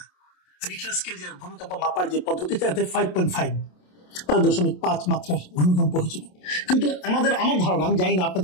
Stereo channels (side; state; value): right; late; 27 ms